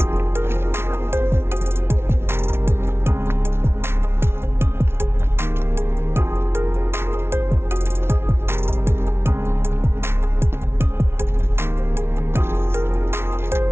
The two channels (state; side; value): late; left; 0.12 ms